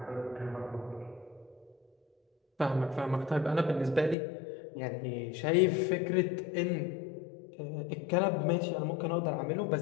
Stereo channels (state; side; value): drops out; right; at 4.2 s